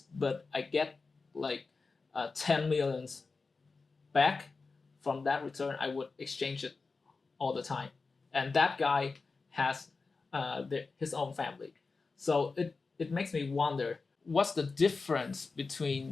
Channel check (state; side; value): quieter; right; 4.2 dB